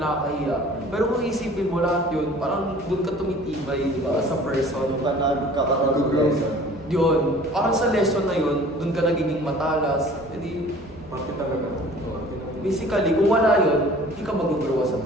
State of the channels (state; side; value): normal; both; correlation 0.48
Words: Pero kung isipin mo lahat yun, parang dun ka tumitibay, di ba, as a person. Kakaroon lesson. Yun, parang sa lesson na yun, dun ka nagiging matalas. Hindi, Parte talaga. basically, kung wala yun, hindi ka mag-grow as a